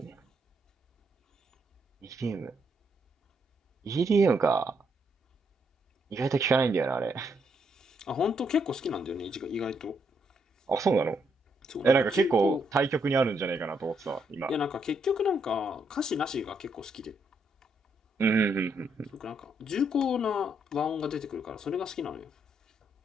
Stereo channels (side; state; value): both; normal; correlation 0.76